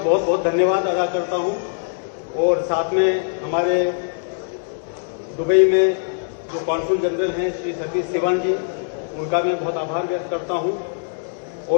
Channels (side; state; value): right; silent; digital silence